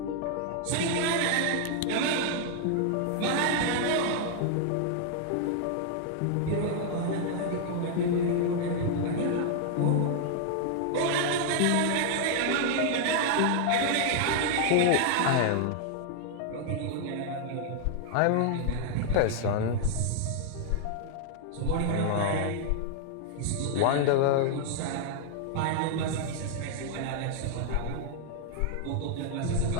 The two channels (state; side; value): different; both; correlation 0.00